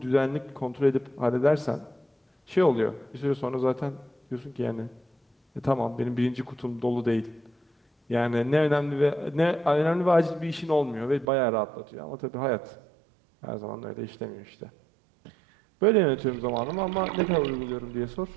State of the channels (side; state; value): left; drops out; at 11.2 s